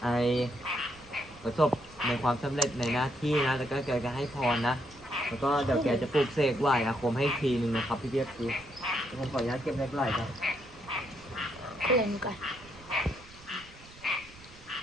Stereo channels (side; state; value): right; noise; rumble, 22 dB below the sound